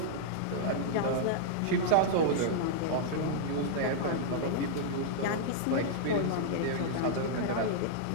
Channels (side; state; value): both; different; correlation -0.01